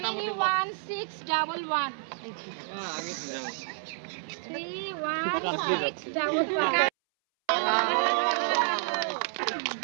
31611 আগে 31611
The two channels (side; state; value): left; silent; 58 dB below the other